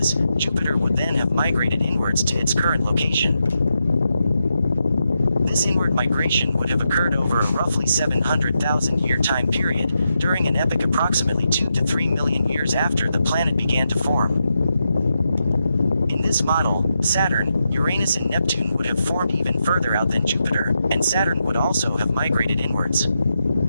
Jupiter would then have migrated inwards to its current location. This inward migration would have occurred over a roughly 700,000 year time period, during an epoch approximately 2 to 3 million years after the planet began to form. In this model, Saturn, Uranus and Neptune would have formed even further out than Jupiter, and Saturn would also have migrated inwards.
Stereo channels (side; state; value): both; inverted; correlation -0.85